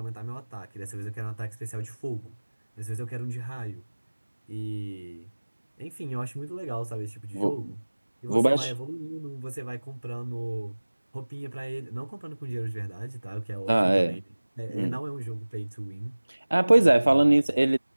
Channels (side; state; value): both; inverted; correlation -1.00